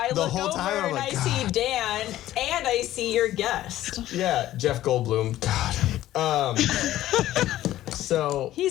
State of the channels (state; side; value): quieter; right; 14.1 dB